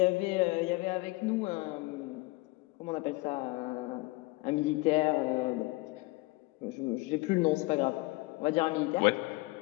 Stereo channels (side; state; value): right; quieter; 23.0 dB